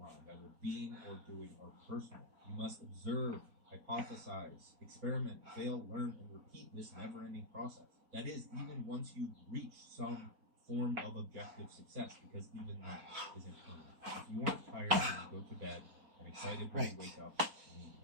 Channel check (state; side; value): late; left; 4.4 ms